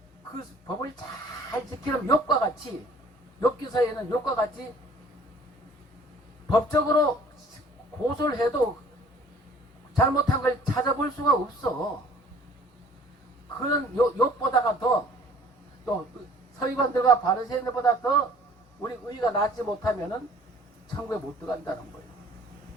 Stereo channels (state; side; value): normal; both; correlation 0.54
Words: 그 법을 잘 지키는 욥과 같이 욥기서에는 욥과 같이 법적으로 고소를 해도 잘못한 걸 찾아볼 수가 없어. 그런 욥보다가 더 또 서기관들과 바리새인들보다 더 우리 의가 낫지 못하면은 천국에 못 들어간다는 거예요.